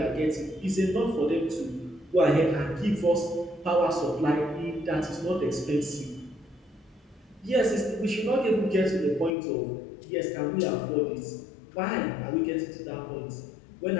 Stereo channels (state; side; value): drops out; right; at 9.3 s